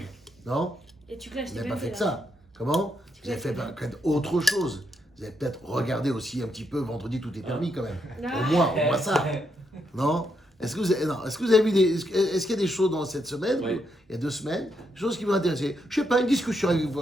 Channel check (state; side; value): normal; both; correlation 0.79